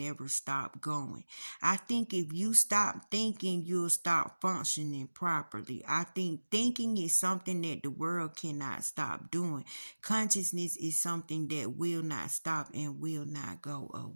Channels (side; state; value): both; inverted; correlation -1.00